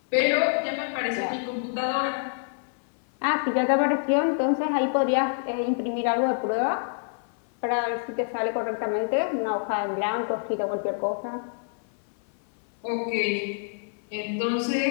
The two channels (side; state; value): right; silent; 59 dB below the other